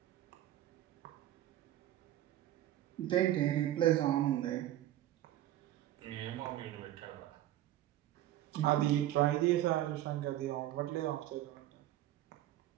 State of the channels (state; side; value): quieter; left; 13.6 dB